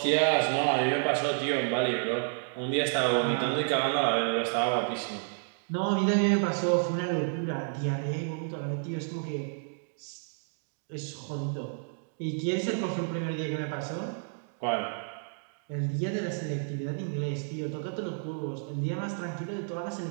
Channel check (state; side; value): silent; left; digital silence